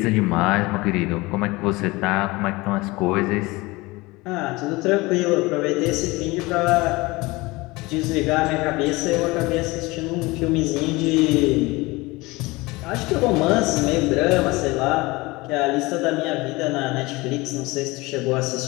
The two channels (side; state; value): right; quieter; 22.5 dB